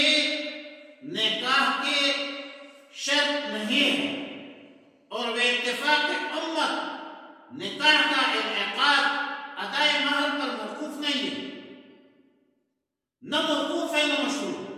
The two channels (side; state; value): both; identical; correlation 1.00